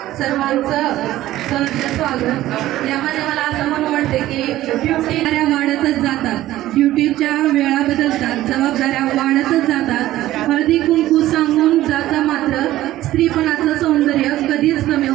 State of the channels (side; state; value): left; quieter; 14.9 dB